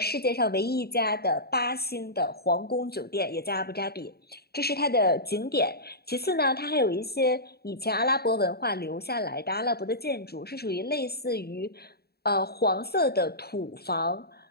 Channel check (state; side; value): late; right; 0.46 ms